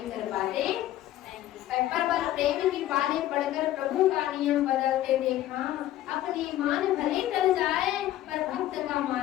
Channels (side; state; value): right; quieter; 13.7 dB